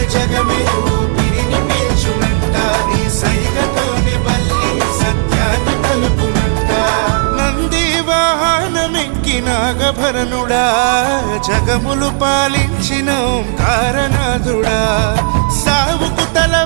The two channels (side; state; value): left; silent; digital silence